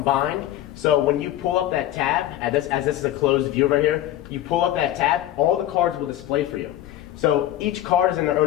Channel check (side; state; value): right; quieter; 13.1 dB